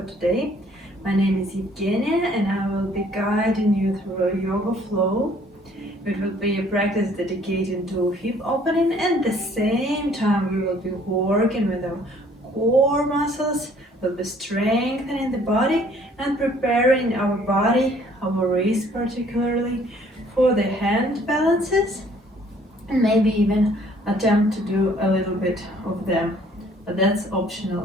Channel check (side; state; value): both; normal; correlation 0.59